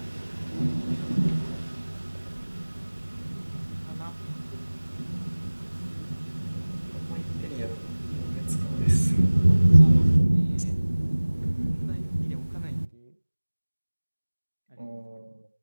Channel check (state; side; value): inverted; both; correlation -1.00